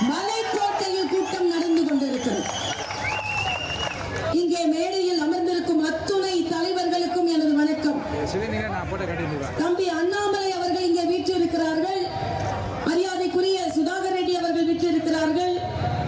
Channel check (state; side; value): identical; both; correlation 1.00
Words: மலைக்கோட்டையில் கூட்டம் நடந்து கொண்டிருக்கிறது. இங்கே மேடையில் அமர்ந்திருக்கும் அத்துணை தலைவர்களுக்கும் எனது வணக்கம். தம்பி அண்ணாமலை அவர்கள் இங்கே வீற்றிருக்கிறார்கள். மரியாதைக்குரிய சுதாகர் ரெட்டி அவர்கள் வீற்றிருக்கிறார்கள்.